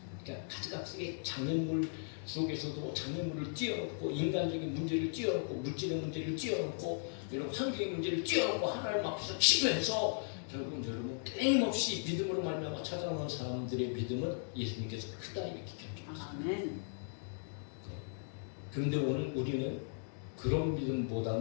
그러니까 가지각색의 장애물 속에서도 장애물을 띄워놓고 인간적인 문제를 띄워놓고 물질의 문제를 띄워놓고 이런 환경의 문제를 띄워놓고 하나님 앞에서 기도해서 결국은 여러분 끊임없이 믿음으로 말미암아 찾아오는 사람들의 믿음은 예수님께서 크다 이렇게 기억해주셨습니다. 그런데 오늘 우리는 그런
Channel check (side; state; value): right; silent; digital silence